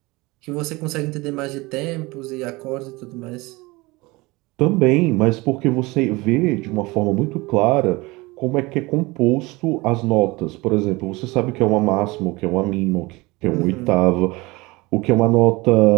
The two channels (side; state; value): left; quieter; 22.9 dB